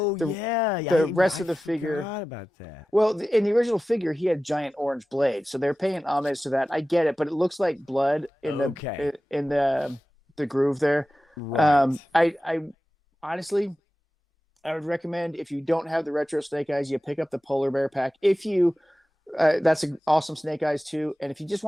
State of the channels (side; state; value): both; normal; correlation 0.95